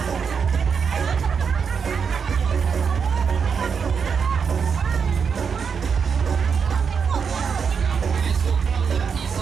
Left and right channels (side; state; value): left; quieter; 6.3 dB